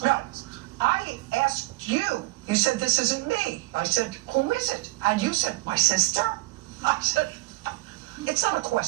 No, I asked you. You said, this isn't me. I said, who is it? And you said, my sister? I said, it's not a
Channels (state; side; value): quieter; left; 22.5 dB